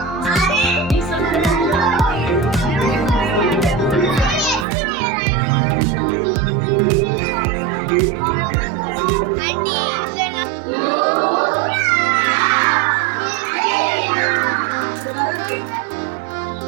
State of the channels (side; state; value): left; drops out; at 4.7 s